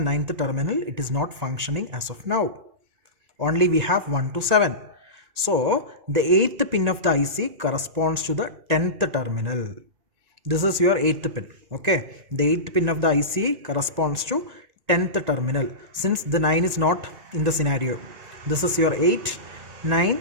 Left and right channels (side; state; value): left; late; 1.9 ms